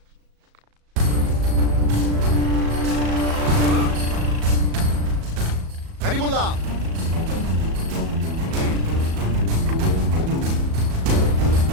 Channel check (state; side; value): late; left; 37 ms